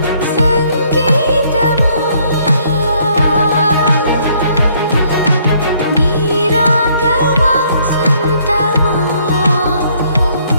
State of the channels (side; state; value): both; inverted; correlation -0.66